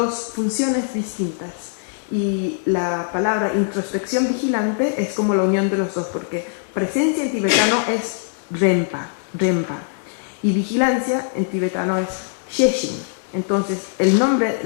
funciones distintas, y la palabra introspección vigilante es como la unión de los dos, porque presencia en tibetano es rempa, y vigilancia en tibetano es sheshin. Entonces, el nombre,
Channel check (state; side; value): silent; right; digital silence